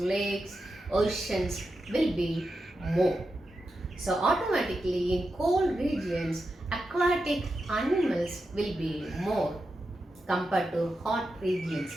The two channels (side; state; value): both; normal; correlation 0.89